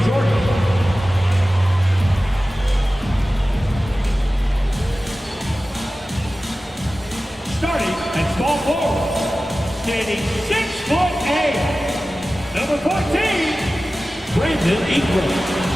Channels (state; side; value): normal; both; correlation 0.95